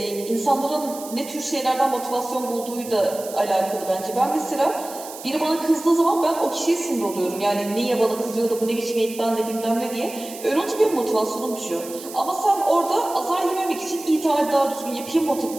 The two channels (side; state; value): right; noise; hiss, 14 dB below the sound